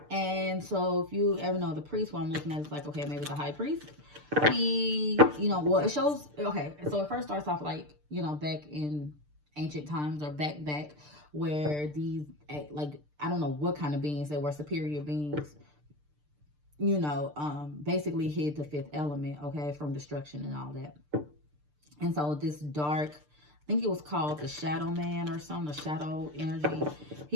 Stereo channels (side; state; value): left; late; 6.7 ms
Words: And so if you ever know the priest, what I'm looking at is like, okay, maybe the high priest. He, you know, well, it shows, okay, so it first starts off like, you know, back in ancient times or back where these, like, I don't know what kind of beings they were, superior beings, you know, basically hid the fifth element, okay, from destruction and all that. And so this dark, I think it was called the Shadow Man or something, the Shadow Energy.